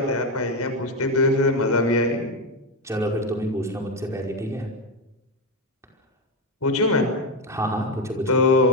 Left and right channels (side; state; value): both; normal; correlation 0.11